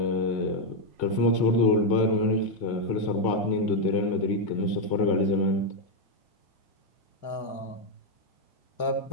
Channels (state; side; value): late; right; 1.8 ms